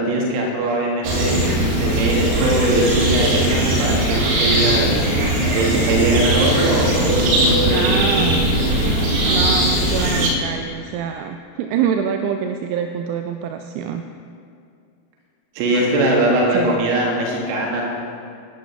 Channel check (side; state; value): left; late; 35 ms